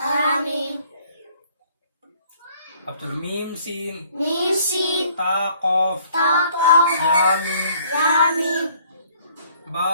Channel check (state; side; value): inverted; both; correlation -0.59